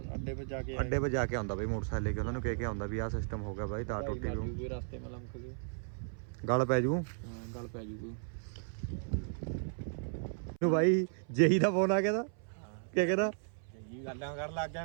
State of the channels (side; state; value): left; silent; 54 dB below the other